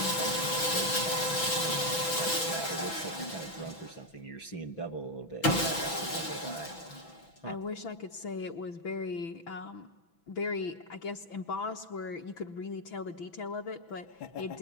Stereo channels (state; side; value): late; right; 6.0 ms